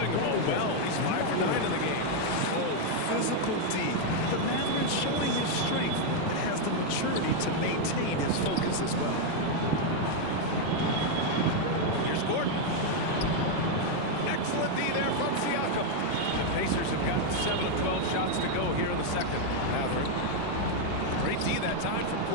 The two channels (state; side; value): different; both; correlation 0.01